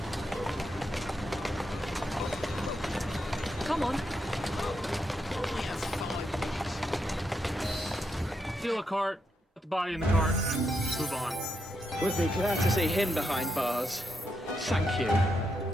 Come on. Steal a cart, put the body in the cart, move on. Would be glad to see him behind bars. Thank you.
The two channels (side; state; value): both; normal; correlation 0.82